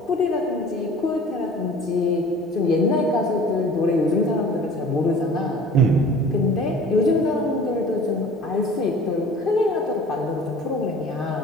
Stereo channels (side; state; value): both; normal; correlation 0.45